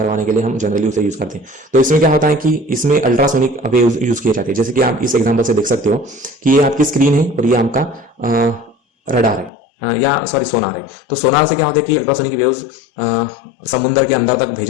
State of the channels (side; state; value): right; drops out; at 9.5 s